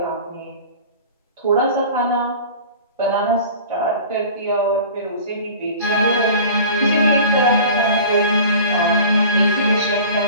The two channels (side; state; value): both; inverted; correlation -0.40